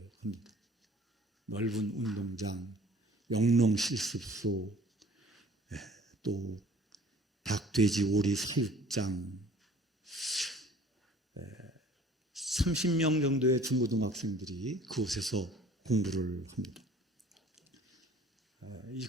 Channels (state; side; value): normal; both; correlation 0.51